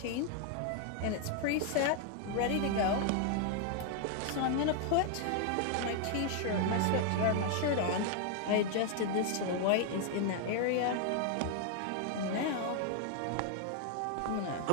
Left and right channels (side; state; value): both; different; correlation 0.00